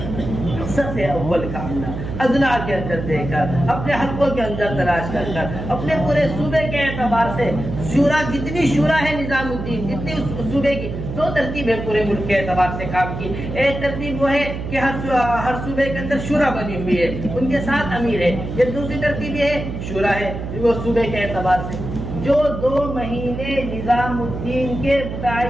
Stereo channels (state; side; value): noise; right; hum, 6 dB below the sound